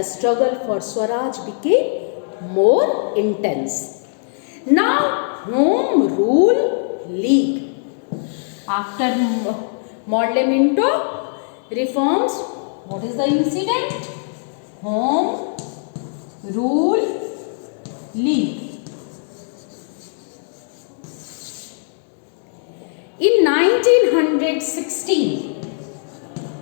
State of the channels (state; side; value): silent; right; 65 dB below the other